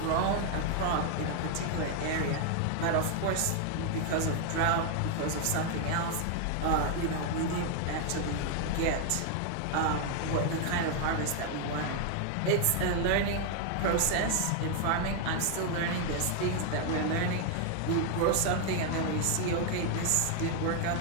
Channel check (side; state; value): both; different; correlation 0.00